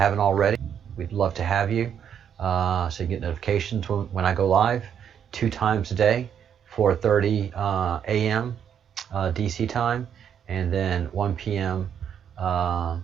already. We'd love to have you, so you get notifications when I go live 2 times a day, 4:30 a.m. DC time, and then 1 p.m.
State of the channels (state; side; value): quieter; left; 8.5 dB